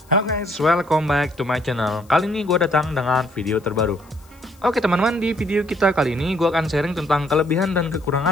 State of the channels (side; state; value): left; noise; hiss, 29 dB below the sound